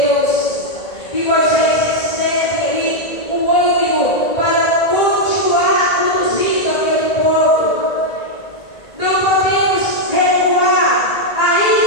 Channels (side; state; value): right; late; 1.9 ms